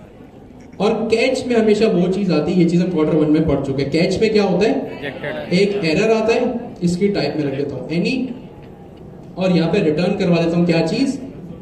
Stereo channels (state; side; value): identical; both; correlation 1.00